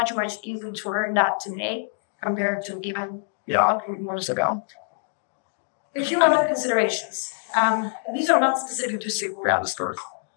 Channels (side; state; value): right; silent; digital silence